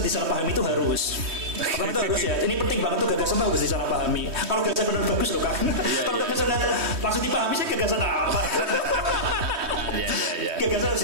disalahpahami itu harus. Pertama itu harus ya. Ini penting banget tuh, gagasan harus disalahpahami. Kalau gagasan benar bagus loh kan. Kalau gagasan langsung dipahami sih gagasan apa? Gagasan harus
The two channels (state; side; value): late; left; 3.2 ms